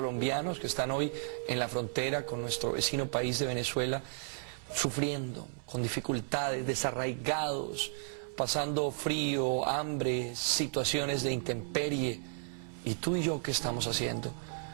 que están hoy en la frontera con nuestro vecino país de Venezuela, sufriendo, con dificultades, desarraigados, pasando frío, hambre, situaciones de intemperie. ¿Y tú y yo qué estamos haciendo?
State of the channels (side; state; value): left; silent; 55 dB below the other